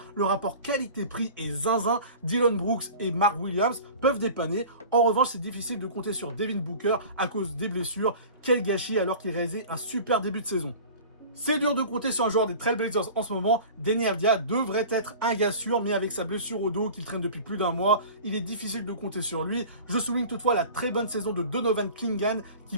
Le rapport qualité-prix est zinzin. Dillon Brooks et Mark Williams peuvent dépanner. En revanche, c'est difficile de compter sur Devin Booker à cause des blessures. Quel gâchis alors qu'il réalisait un super début de saison. C'est dur de compter sur un joueur des Trailblazers en ce moment. Deni Avdija devrait être un gars sûr, mais avec sa blessure au dos qu'il traîne depuis plus d'un mois, il est difficile de compter sur lui. Je souligne toutefois la très bonne saison de Donovan Clingan qui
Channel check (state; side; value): inverted; both; correlation -0.39